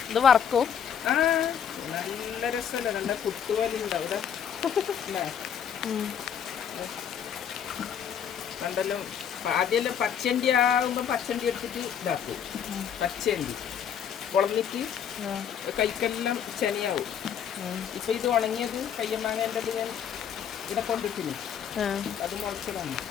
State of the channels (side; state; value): right; quieter; 8.4 dB